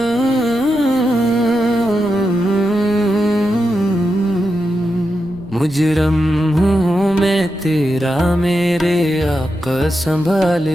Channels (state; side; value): noise; left; rumble, 23 dB below the sound